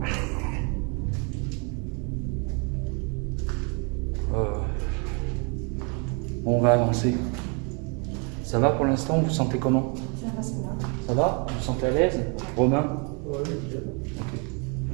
On va avancer. Ça va pour l'instant? Vous vous sentez comment? Ça va, ça va. Ça va? Vous vous sentez à l'aise? Romain? Ouais, nickel. Ok.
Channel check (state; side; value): quieter; left; 34.3 dB